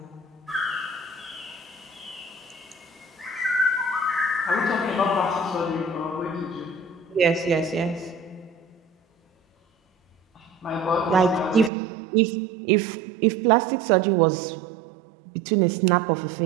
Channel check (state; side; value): drops out; left; at 11.7 s